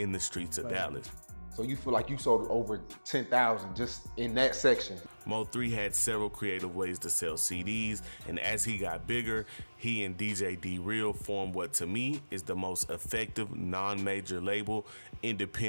the streets of Dallas. So you feel like you sold over 10,000 just in that section? MO3 had several creative ways to sell CDs, and as he got bigger, he and DJ D-Real formed what to me is the most effective non-major label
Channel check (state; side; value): inverted; both; correlation -1.00